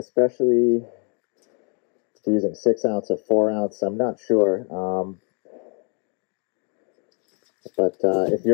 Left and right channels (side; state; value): right; quieter; 38.0 dB